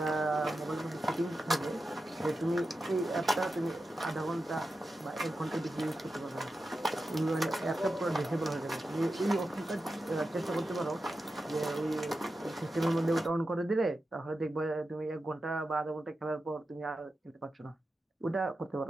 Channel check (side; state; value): both; normal; correlation 0.91